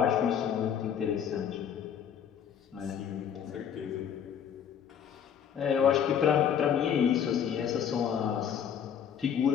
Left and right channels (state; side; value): quieter; right; 8.4 dB